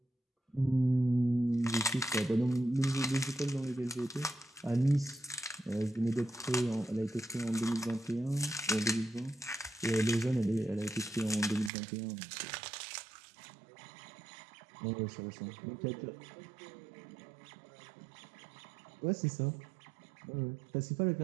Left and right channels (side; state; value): left; drops out; at 11.7 s